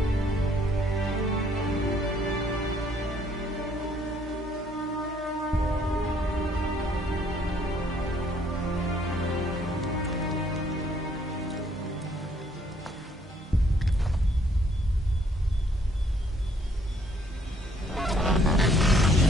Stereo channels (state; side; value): normal; both; correlation 0.66